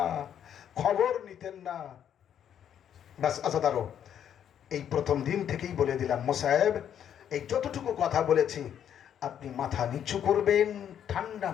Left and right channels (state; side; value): quieter; right; 9.4 dB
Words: খবর নিতেন না। বাস আজাদারও এই প্রথম দিন থেকেই বলে দিলাম, মোসাহেব এই যতটুকু কথা বলেছি আপনি মাথা নিচু করবেন, ঠান্ডা